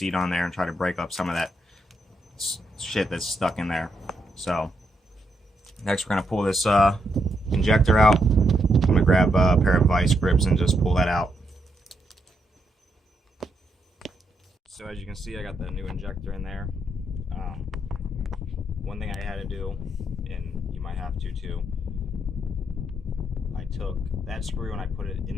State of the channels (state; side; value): normal; both; correlation 0.79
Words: on there and try to break up some of that shit that's stuck in there. So next we're going to pull this injector out. I'm going to grab a pair of vice grips and just pull that out. So as you can see, I got the new injector in there. One thing I had to do, and you might have to too, I took that screw and I put it